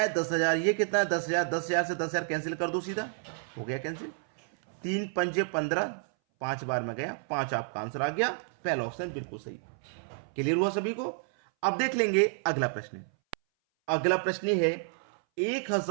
10,000, ये कितना है? 10,000, 10,000 से 10,000 कैंसिल कर दो, सीधा हो गया कैंसिल। 3 पंजे 15, 5 बार में गया 5, आपका आंसर आ गया पहला ऑप्शन बिल्कुल सही। क्लियर हुआ सभी को? अब देख लेंगे अगला प्रश्न। अगला प्रश्न है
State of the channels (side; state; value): left; silent; 58 dB below the other